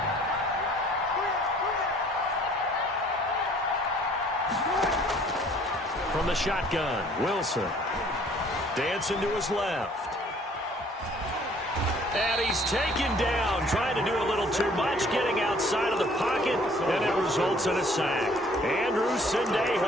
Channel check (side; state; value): both; normal; correlation 0.57